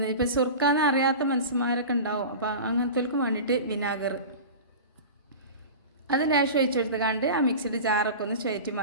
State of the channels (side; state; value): both; inverted; correlation -0.32